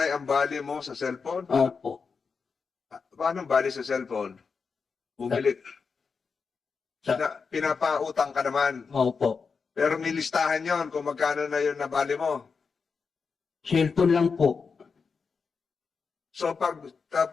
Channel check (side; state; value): right; quieter; 5.3 dB